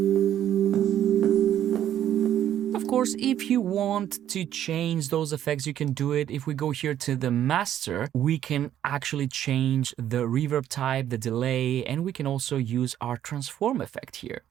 Of course, if you want to change those effects, you can do it. If we go here to the master, we can actually change the reverb type, the delay, and we can also use our transform effect here.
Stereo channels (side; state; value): left; quieter; 11.0 dB